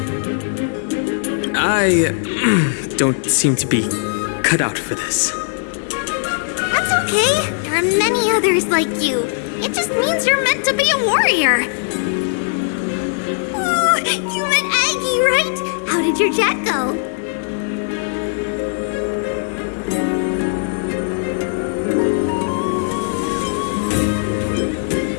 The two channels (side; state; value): right; silent; digital silence